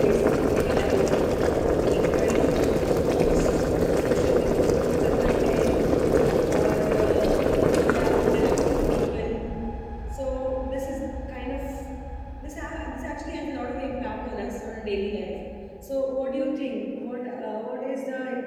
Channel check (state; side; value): identical; both; correlation 1.00